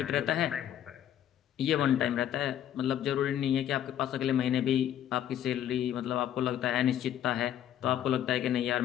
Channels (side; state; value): right; quieter; 10.8 dB